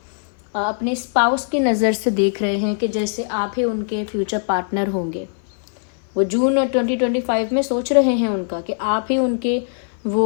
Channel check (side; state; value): right; silent; 57 dB below the other